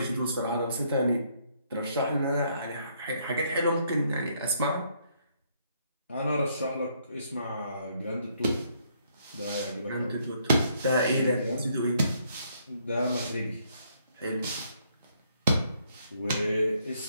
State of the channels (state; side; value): inverted; both; correlation -0.70